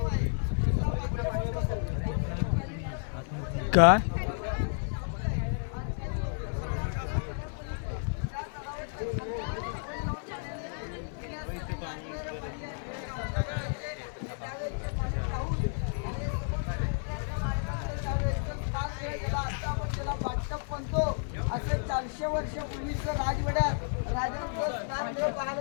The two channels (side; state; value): right; silent; 57 dB below the other